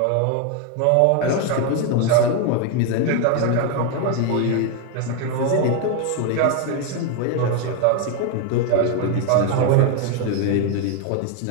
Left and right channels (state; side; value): different; both; correlation 0.01